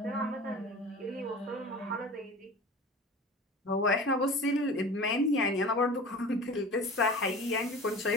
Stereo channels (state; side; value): normal; both; correlation 0.38